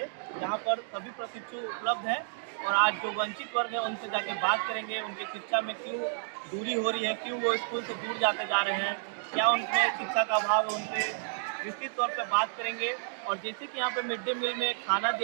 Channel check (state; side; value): silent; left; digital silence